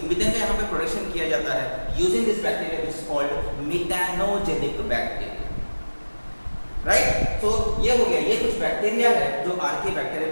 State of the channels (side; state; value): both; inverted; correlation -1.00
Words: प्रोडक्शन किया जाता है using this bacteria which is called methanogenic bacteria, right. तो ये हो गया, ये कुछ बैक्टीरिया है जो आर्की बैक्टीरिया